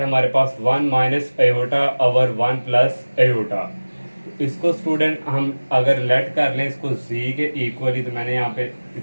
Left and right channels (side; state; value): both; inverted; correlation -1.00